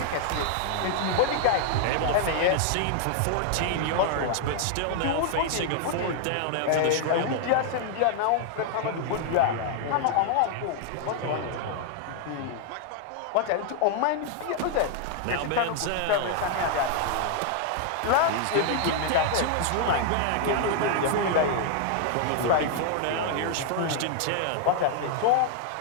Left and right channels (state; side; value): different; both; correlation 0.00